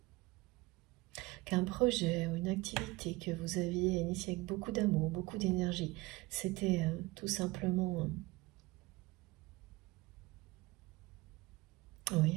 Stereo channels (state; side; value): quieter; left; 21.8 dB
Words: Qu'un projet ou une activité que vous aviez initié avec beaucoup d'amour, beaucoup d'énergie, c'était tout simplement oui,